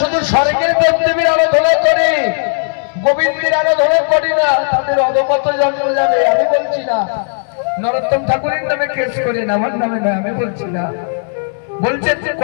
স্বর্গের দেবদেবীর আরাধনা করে, গোবিন্দের আরাধনা করে না, তাদের অধপথ জন্ম যাবে। আমি বলছি না, নরোত্তম ঠাকুরের নামে কেস করেন, আমার নামে নয়, আমি বলছি না। বলছেন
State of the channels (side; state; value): right; silent; 69 dB below the other